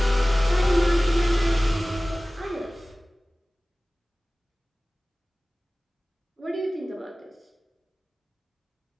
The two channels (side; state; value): both; normal; correlation 0.98